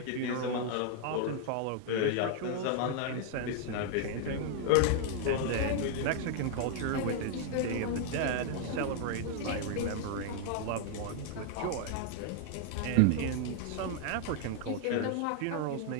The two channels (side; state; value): both; different; correlation 0.00